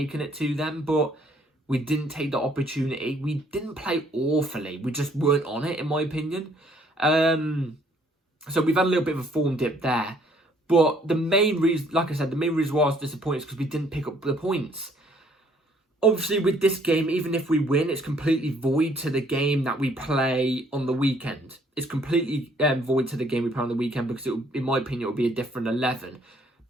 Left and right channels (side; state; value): both; normal; correlation 0.63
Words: it to them. But we didn't take the opportunity. We didn't play awfully. We just weren't on it, in my opinion. So we've had a little bit of a form dip there. But the main reason, like I said, the main reason why I was disappointed is because we didn't pick up the points. Obviously, with this game, even if we win, it's completely void to the game that we play on the weekend. It's completely void to the game we play on the weekend because, in my opinion, it will be a different 11.